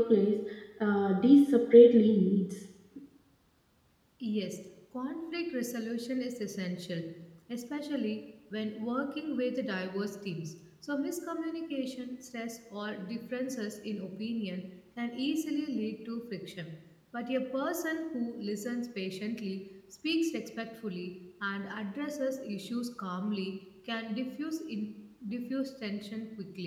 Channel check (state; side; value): identical; both; correlation 1.00